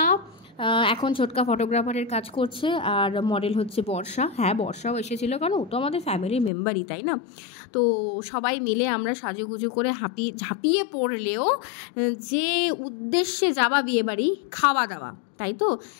এখন ছোটকা ফটোগ্রাফারের কাজ করছে, আর মডেল হচ্ছে বর্ষা। হ্যাঁ, বর্ষাও এসেছিলো, কারণ ও তো আমাদের ফ্যামিলির মেম্বারই, তাই না? তো সবাই মিলে আমরা সাজুগুজু করে ঝাঁপিয়ে পড়লেও যে উদ্দেশ্যে যাওয়া বিয়েবাড়ি, খাওয়া দাওয়া, তাই তো,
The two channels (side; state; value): right; drops out; at 6.5 s